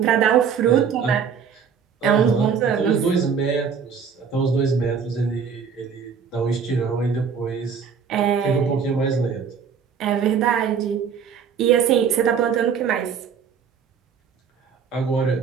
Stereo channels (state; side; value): quieter; left; 6.7 dB